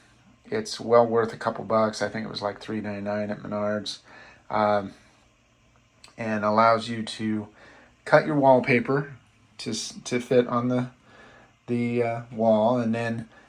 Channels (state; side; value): identical; both; correlation 1.00